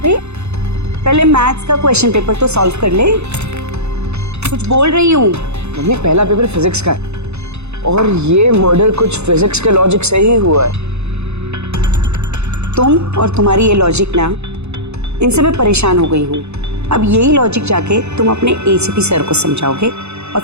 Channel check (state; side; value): late; left; 0.81 ms